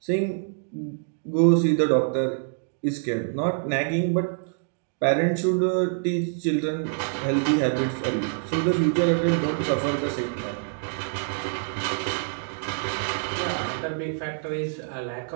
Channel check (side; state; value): left; silent; digital silence